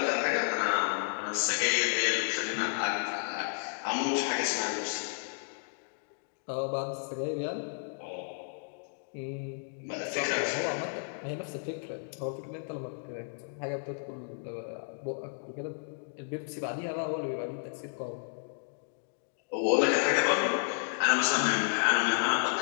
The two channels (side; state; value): right; silent; digital silence